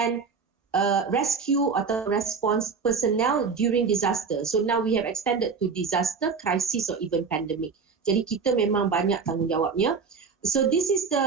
rescue atau response personnel during disaster. So now we have extended to disaster, crisis or even pandemic. Jadi kita memang banyak tanggungjawabnya. So this is the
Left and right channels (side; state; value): left; quieter; 5.4 dB